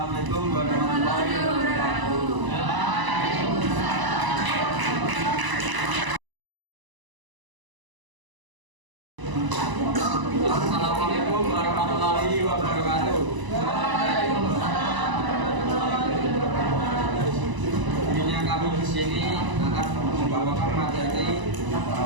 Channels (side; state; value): left; late; 1.0 ms